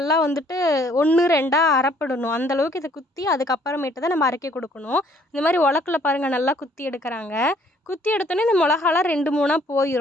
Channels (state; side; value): normal; both; correlation 0.62